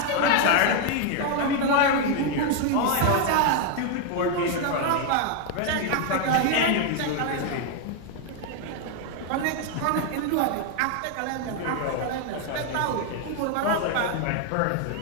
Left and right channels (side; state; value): both; different; correlation 0.01